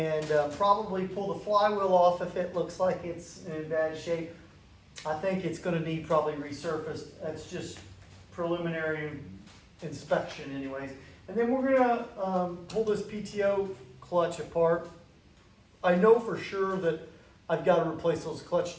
probably pull the flywheel off if it looks like it's in bad shape. I think it's going to need probably resurfaced. That's just preliminary inspection anyways. And then we're going to pull this PTO clutch apart. I know for sure that I've got to replace those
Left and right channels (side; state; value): both; identical; correlation 1.00